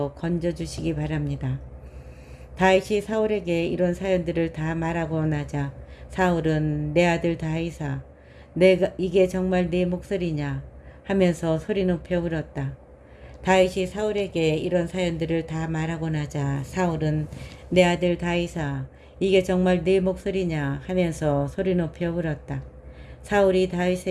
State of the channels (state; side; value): identical; both; correlation 1.00